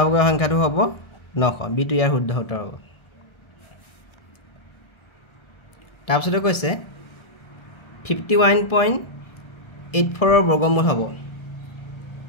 সংখ্যাটো হ'ব 900 বিটো ইয়াৰ শুদ্ধ উত্তৰ হ'ব তাৰপিছতে কৈছে 51.84 ৰ বৰ্গমূল হ'ব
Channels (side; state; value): right; late; 1.3 ms